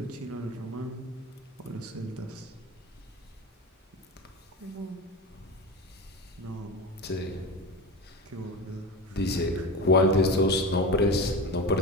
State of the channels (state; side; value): normal; both; correlation 0.26